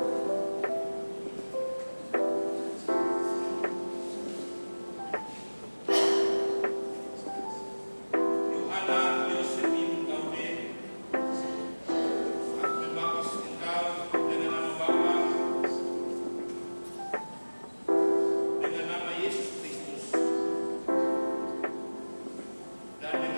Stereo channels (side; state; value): both; inverted; correlation -1.00